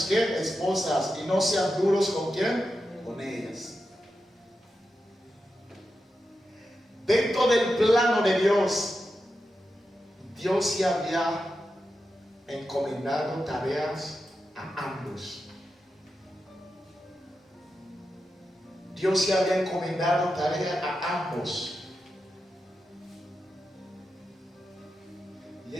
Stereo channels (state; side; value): normal; both; correlation 0.89